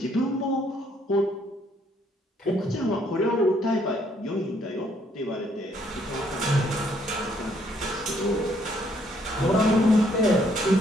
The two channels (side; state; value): both; normal; correlation 0.68